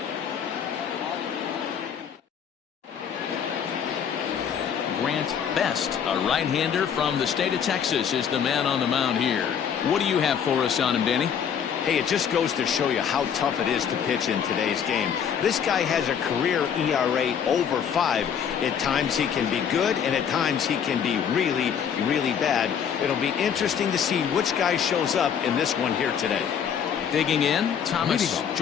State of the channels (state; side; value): quieter; right; 7.9 dB